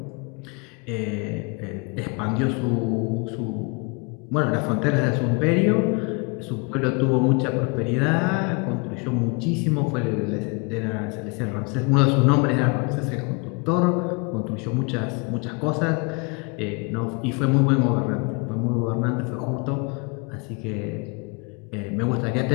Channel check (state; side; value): quieter; right; 31.8 dB